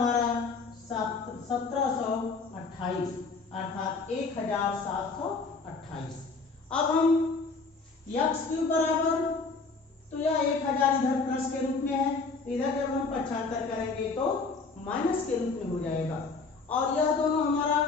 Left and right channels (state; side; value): quieter; right; 4.3 dB